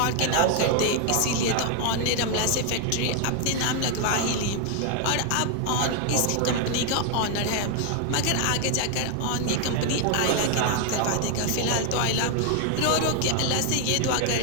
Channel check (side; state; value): both; different; correlation 0.00